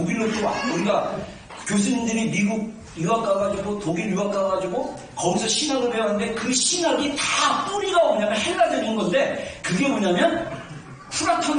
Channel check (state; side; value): identical; both; correlation 1.00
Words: 또 우리가 교수님들이 미국 유학 가가지고 독일 유학 가가지고 거기서 신학을 배웠는데 그 신학이 다 뿌리가 뭐냐면 헬라적인 건데 그게 뭐냐면